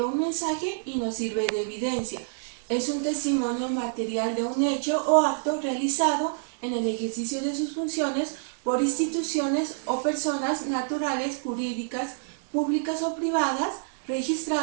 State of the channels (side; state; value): left; silent; digital silence